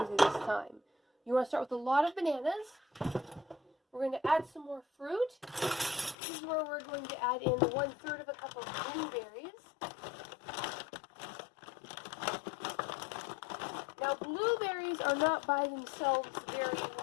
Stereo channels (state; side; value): drops out; right; at 6.2 s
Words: this time. You want to start with a lot of bananas. We're going to add some more fruit. This is where we're going to add in 1/3 of a cup of blueberries. Now, blueberries are not by themselves very